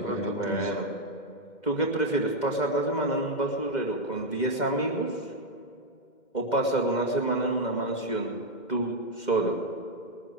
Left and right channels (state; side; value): late; right; 2.1 ms